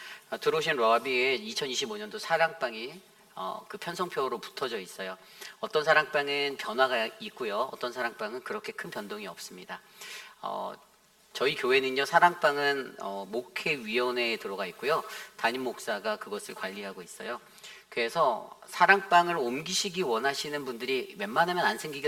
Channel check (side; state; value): both; identical; correlation 1.00